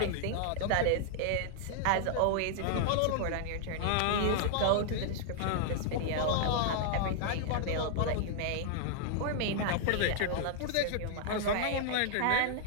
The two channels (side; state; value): both; different; correlation -0.01